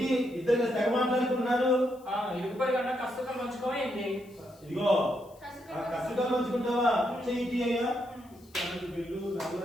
ఇద్దరు తెగ మాట్లాడుకున్నారు? ఇరుగుపరి కన్నా కష్టం మంచుకోమైంది. ఇదిగో ఆ కష్టంగా పంచుకుంటావా? చెయ్యి అయ్యా, కరెంటు బిల్లు, నల్ల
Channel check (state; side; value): noise; left; hiss, 28 dB below the sound